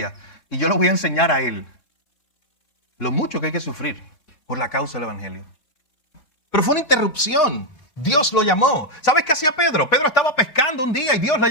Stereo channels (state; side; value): late; right; 3.7 ms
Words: y yo lo voy a enseñar a él lo mucho que hay que sufrir por la causa del evangelio. Pero fue una interrupción. Dios lo llamó. ¿Sabes qué hacía Pedro? Pedro estaba pescando un día y Dios lo